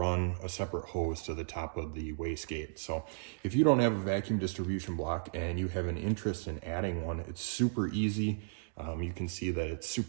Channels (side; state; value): left; silent; digital silence